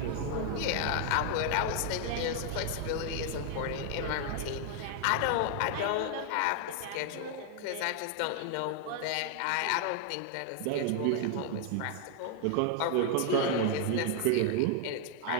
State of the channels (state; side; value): different; both; correlation 0.00